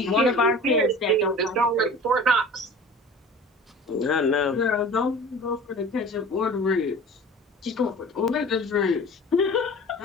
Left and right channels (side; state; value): both; normal; correlation 0.41